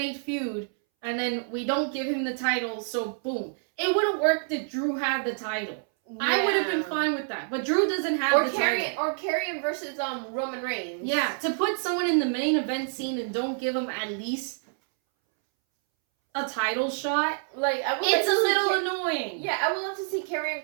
feud, and then we don't give him the title, so boom. It wouldn't work that Drew had the title. Yeah. I would have been fine with that. But Drew doesn't have the title. Or Karrion versus Roman Reigns. Yeah, to put someone in the main event scene and don't give him at least a title shot, like it's a little annoying. Yeah, I would love to see Karrion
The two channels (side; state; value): left; silent; 60 dB below the other